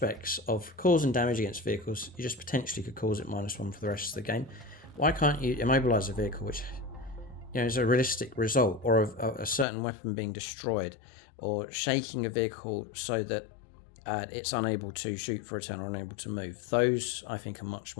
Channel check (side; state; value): right; drops out; at 9.7 s